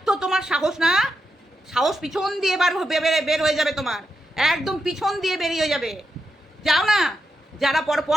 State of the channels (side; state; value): both; normal; correlation 0.85